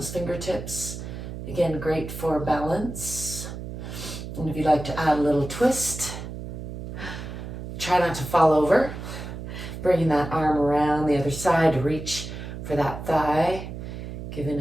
fingertips. Again, great for balance. And if you'd like to add a little twist, try not to fall over. Bringing that arm around the other side to reach for that thigh.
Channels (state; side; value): noise; right; hum, 8 dB below the sound